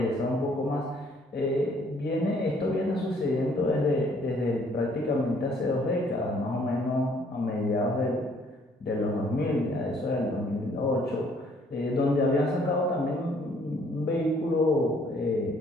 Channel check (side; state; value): both; normal; correlation 0.63